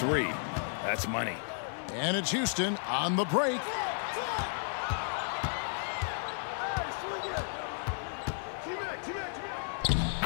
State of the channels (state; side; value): silent; right; digital silence